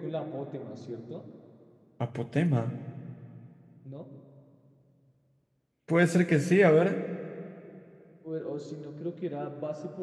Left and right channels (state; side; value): identical; both; correlation 1.00